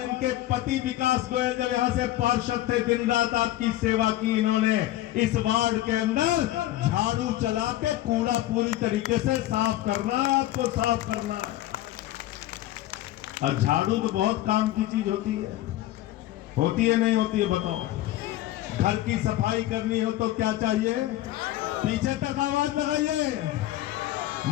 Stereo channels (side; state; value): right; quieter; 14.9 dB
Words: इनके पति विकास गोयल जब यहाँ से पार्षद थे, दिन रात आपकी सेवा की इन्होंने। इस वार्ड के अंदर झाड़ू चला के कूड़ा पूरी तरीके से साफ करना है, आपको साफ करना है। और झाड़ू तो बहुत काम की चीज होती है। होती है नहीं होती है बताओ। घर की सफाई करनी हो तो क्या चाहिए? पीछे तक आवाज लगाइए।